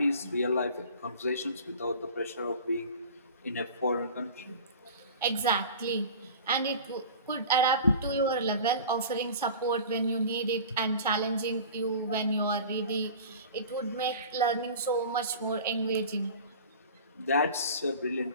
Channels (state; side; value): inverted; both; correlation -0.38